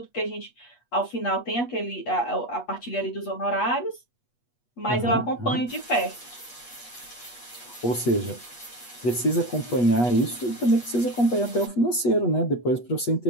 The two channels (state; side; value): late; right; 8.3 ms